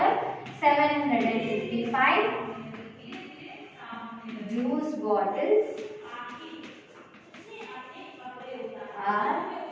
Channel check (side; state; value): both; identical; correlation 1.00